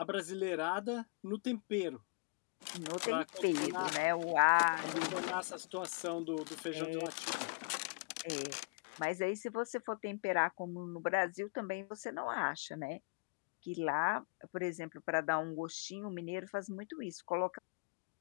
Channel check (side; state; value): right; quieter; 30.5 dB